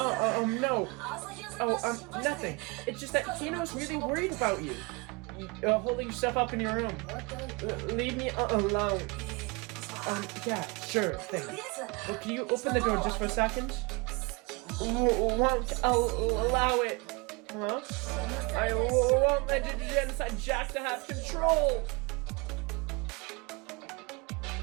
Nothing. It's just that Hino's really worried about you. Holding yourself up in your room. Leave me alone. Yeah, sure thing. Well, can you open the door just for a second? Won't allow it. Huh? I won't let the genocide Jack to have control.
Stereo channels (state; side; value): quieter; left; 28.2 dB